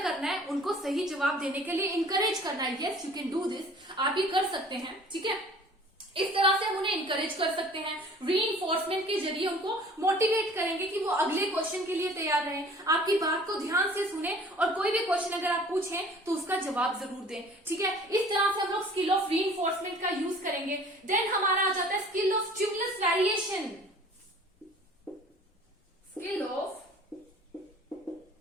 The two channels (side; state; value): both; normal; correlation 0.49